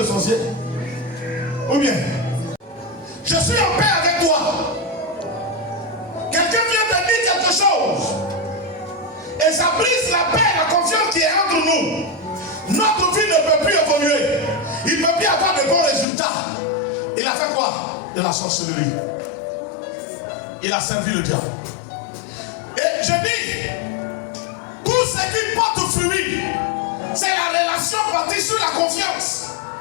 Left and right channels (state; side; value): drops out; right; at 16.1 s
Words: sorcier. Ou bien, je suis en paix avec toi. Quelqu'un vient te dire quelque chose. Et ça brise la paix, la confiance qui est entre nous. Notre vie ne peut plus évoluer. Il ne peut plus avoir de bons résultats. Il a fait quoi? De la sorcellerie. Il a servi le diable. Et je dis, tout ce qui porte fruit, c'est la relation bâtie sur la confiance.